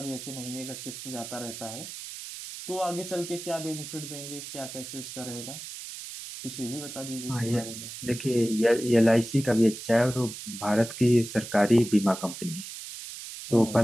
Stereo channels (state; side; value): noise; right; hiss, 10 dB below the sound